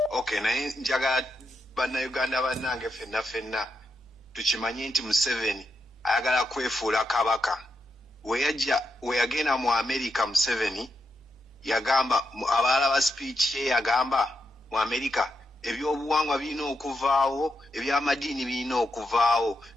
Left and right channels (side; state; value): both; normal; correlation 0.84